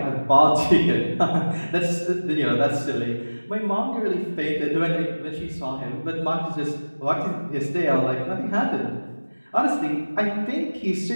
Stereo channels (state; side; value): inverted; both; correlation -1.00